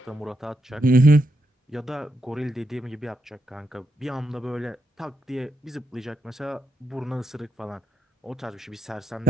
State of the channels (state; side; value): normal; both; correlation 0.81